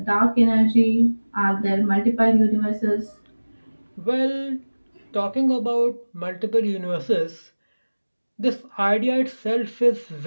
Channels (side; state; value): both; inverted; correlation -1.00